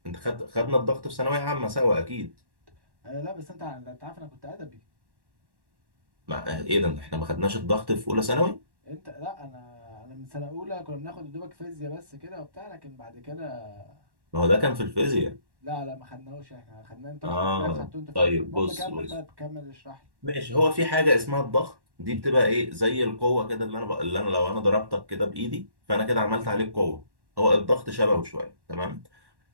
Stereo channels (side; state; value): left; late; 1.1 ms